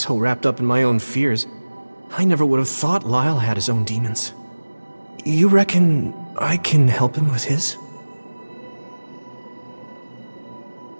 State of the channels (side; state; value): both; inverted; correlation -1.00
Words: wrapped up in my own fears, I never would have thought Lyle had his own demons. You reckon I can help him with his?